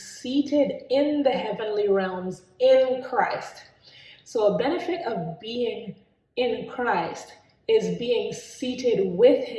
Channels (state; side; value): identical; both; correlation 1.00